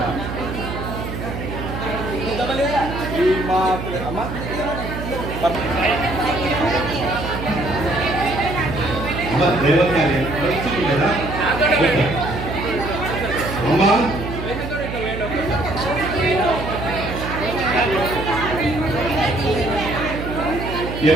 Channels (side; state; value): right; noise; hum, 7 dB below the sound